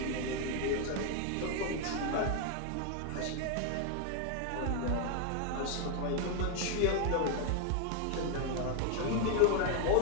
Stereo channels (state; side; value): different; both; correlation 0.01